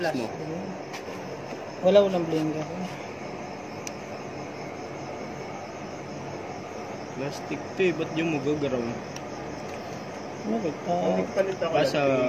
mo. Walang blinker. Plastic to eh, ba't yung magagaraw? Bakit? Palit ako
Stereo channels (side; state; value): both; identical; correlation 1.00